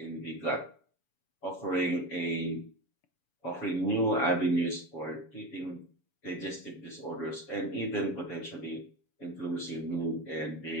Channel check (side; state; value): right; late; 7.1 ms